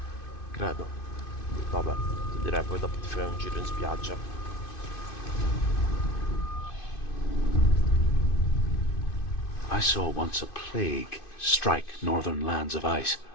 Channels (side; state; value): right; late; 2.5 ms